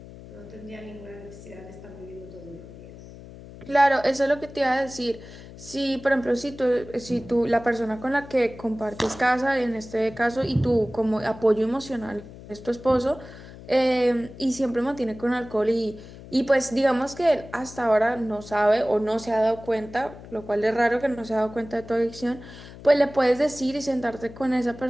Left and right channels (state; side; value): noise; left; hum, 16 dB below the sound